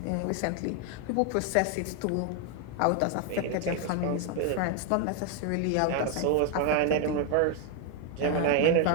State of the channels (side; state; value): both; different; correlation 0.01